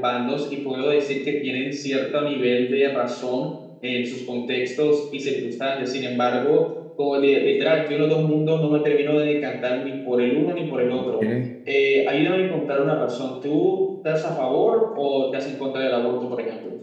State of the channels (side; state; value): both; identical; correlation 1.00